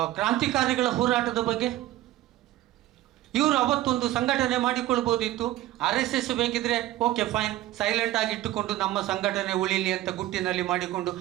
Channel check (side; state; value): left; quieter; 15.0 dB